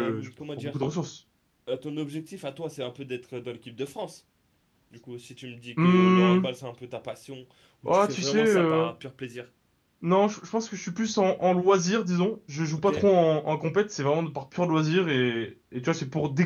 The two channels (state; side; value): identical; both; correlation 1.00